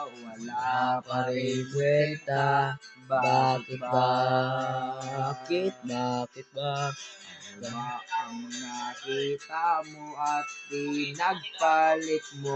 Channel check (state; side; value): identical; both; correlation 1.00